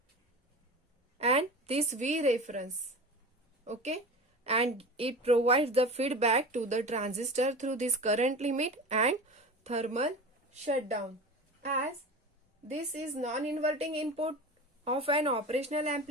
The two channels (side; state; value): both; normal; correlation 0.32